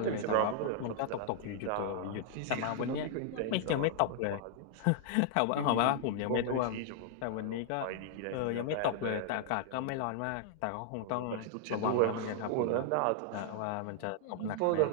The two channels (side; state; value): both; different; correlation 0.00